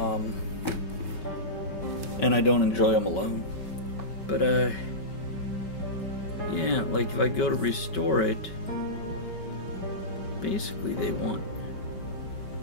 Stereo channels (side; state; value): right; late; 5.3 ms